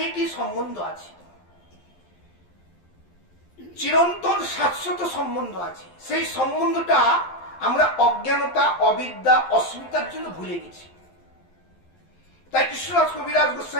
সম্বন্ধ আছে, চিরন্তন শাশ্বত সম্বন্ধ আছে। সেই সম্বন্ধটা আমরা অজ্ঞানতা, অবিদ্যা, অস্মিতার জন্য ভুলে গেছি। তাই কৃষ্ণদাস কবিরাজ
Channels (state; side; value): late; right; 11 ms